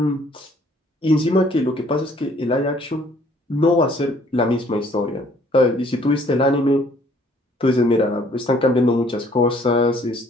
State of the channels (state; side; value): normal; both; correlation 0.61